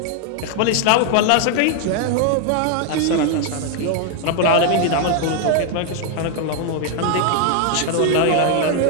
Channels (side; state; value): both; different; correlation 0.01